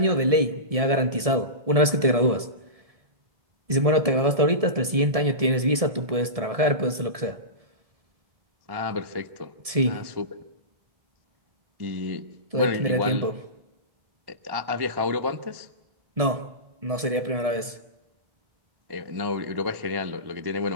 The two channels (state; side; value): late; left; 1.7 ms